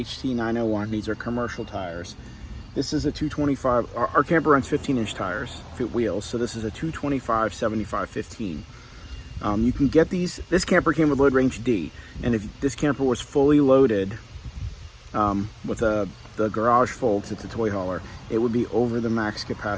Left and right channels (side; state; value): both; identical; correlation 1.00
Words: These are commercial tires. This is a 225. Our camper runs 15-inch tires, wheels. So this is a 225 75 15. You can get these. This camper came with load range D, and if this camper was fully loaded with the garage full, because it's a toy hauler, it would be over the max